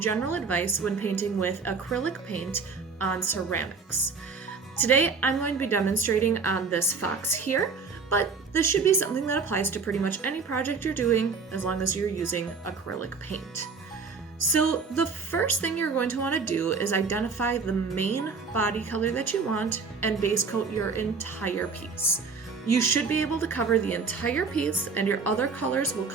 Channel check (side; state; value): left; quieter; 4.9 dB